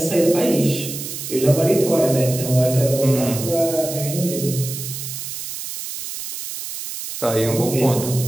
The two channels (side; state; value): right; noise; hiss, 8 dB below the sound